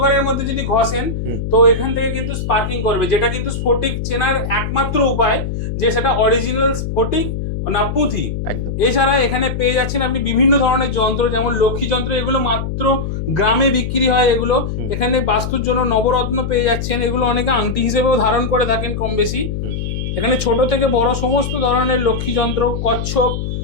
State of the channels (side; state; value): left; noise; hum, 4 dB below the sound